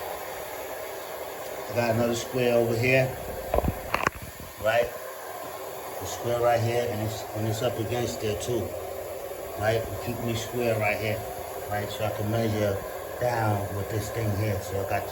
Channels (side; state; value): both; identical; correlation 1.00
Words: I got another square over here, right? The square right here, and it's up against there too, right? Keep me square right here, right? So I can measure down with this thing here. So I got